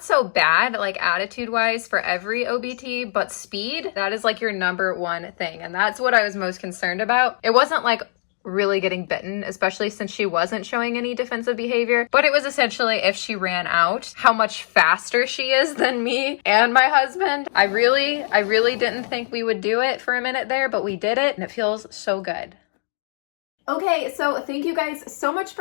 so bad, like attitude-wise for every OBT, but speed, that is like your #1 thing. And that's what I was most concerned about. It wasn't like really getting bitten, especially since she wasn't showing any defensive behavior, but it was essentially if she ran out, how much faster she is than me and my husband. I really didn't think we would do it for a minute there, but we did it and it feels so good. Okay, so thank you guys so much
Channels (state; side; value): silent; right; digital silence